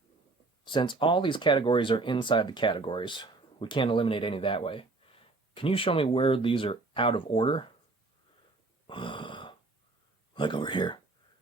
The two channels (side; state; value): left; quieter; 3.5 dB